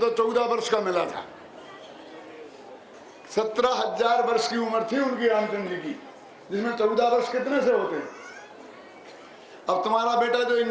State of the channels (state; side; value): identical; both; correlation 1.00